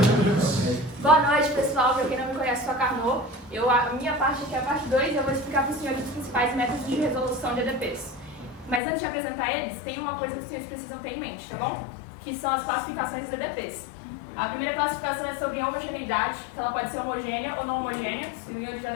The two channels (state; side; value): drops out; right; at 8.8 s